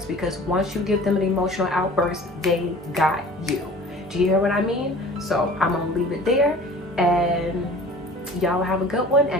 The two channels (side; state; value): both; normal; correlation 0.44